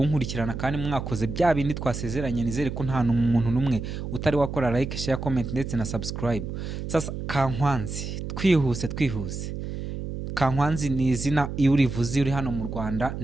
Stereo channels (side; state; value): right; noise; hum, 6 dB below the sound